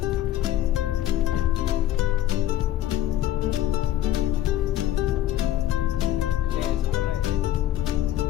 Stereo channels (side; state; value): right; quieter; 12.9 dB